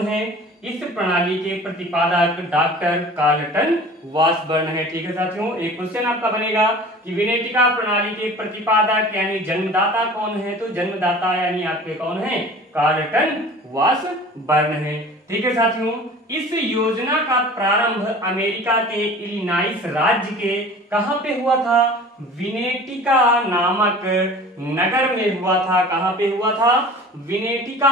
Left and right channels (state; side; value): normal; both; correlation 0.43